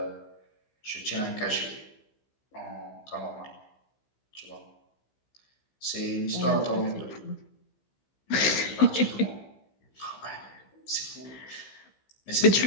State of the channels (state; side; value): late; right; 15 ms